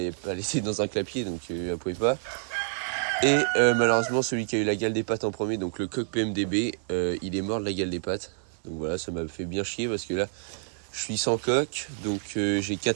elle était dans un clapier, donc elle pouvait pas. Et malheureusement, celui qui a eu la gale des pattes en premier, donc le coq PMDB, il est mort de la gale des pattes. Donc voilà, ça m'a fait bien chier parce que là, je suis sans coq, donc j'ai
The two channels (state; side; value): silent; left; 57 dB below the other